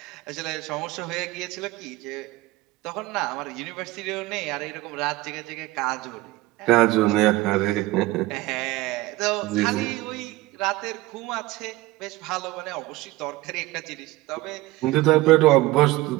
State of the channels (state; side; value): quieter; left; 18.8 dB